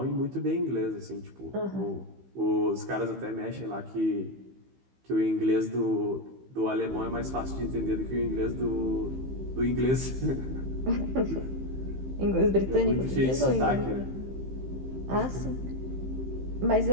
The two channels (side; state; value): left; late; 15 ms